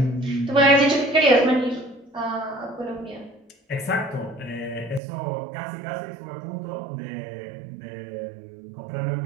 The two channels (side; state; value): left; drops out; at 5.0 s